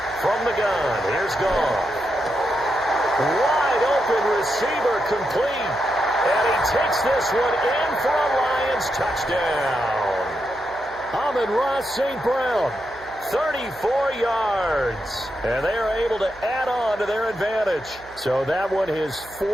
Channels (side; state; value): right; noise; hum, 22 dB below the sound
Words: From the gun, here's Goff. Wide open receiver complete. And he takes this one in for a Lions touchdown. Amon-Ra St. Brown, 34 yards. And they are able to add on to their advantage. So that one, his